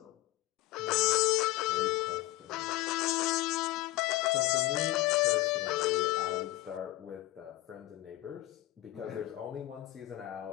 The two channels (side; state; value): right; quieter; 17.2 dB